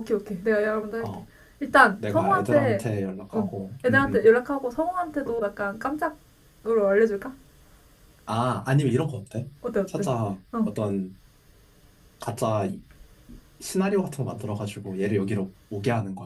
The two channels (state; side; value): identical; both; correlation 1.00